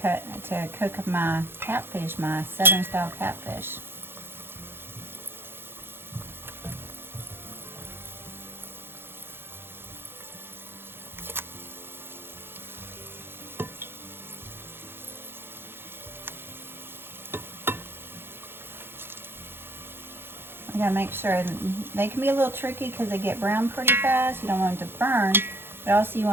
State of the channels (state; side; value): late; left; 0.11 ms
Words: cook my catfish, my Southern style catfish. gotta make sure they can be a little tricky because they get brown pretty fast. You don't want them to burn, but also you